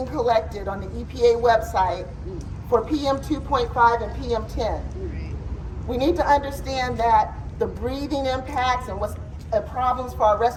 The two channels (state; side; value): identical; both; correlation 1.00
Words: collected on the EPA website for PM 2.5 and PM 10. We need to understand that the breathing impacts and what's problems for our